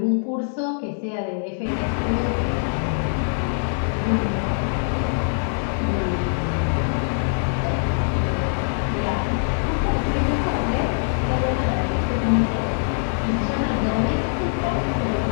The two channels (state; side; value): silent; right; 63 dB below the other